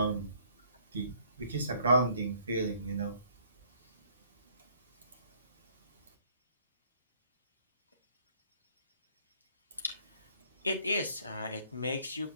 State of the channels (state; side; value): inverted; both; correlation -0.62